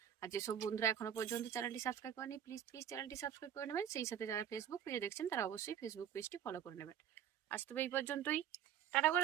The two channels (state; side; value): quieter; left; 9.7 dB